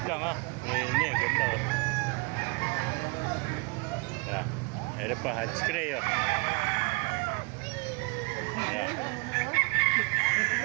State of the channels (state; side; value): quieter; left; 30.2 dB